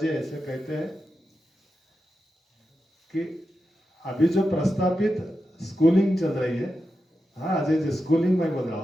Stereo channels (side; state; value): both; normal; correlation 0.90